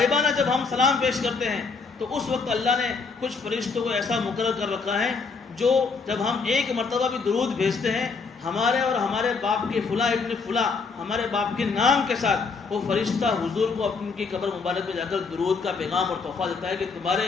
جب ہم سلام پیش کرتے ہیں تو اس وقت اللہ نے کچھ فرشتوں کو ایسا مقرر کر رکھا ہے جو جب ہم ایک مرتبہ بھی درود بھیجتے ہیں ہمارے اور ہمارے باپ کے فلاں ابن فلاں، ہمارے باپ کے نام کے ساتھ، وہ فرشتہ حضور کو اپنی کی قبر مبارک میں جا کر درود کا پیغام اور تحفہ دیتا ہے کہ تمہارے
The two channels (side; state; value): right; quieter; 4.7 dB